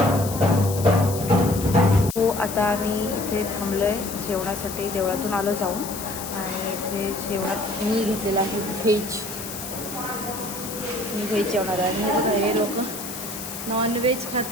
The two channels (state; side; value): noise; left; hiss, 9 dB below the sound